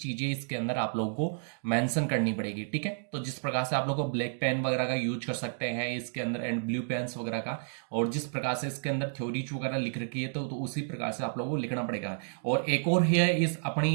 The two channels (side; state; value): left; silent; digital silence